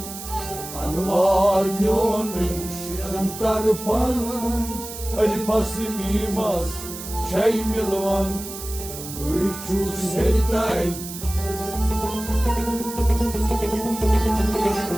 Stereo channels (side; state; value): right; noise; hiss, 10 dB below the sound